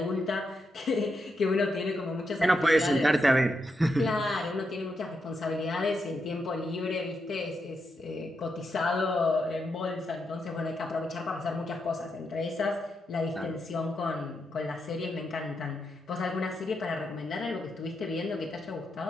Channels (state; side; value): normal; both; correlation 0.84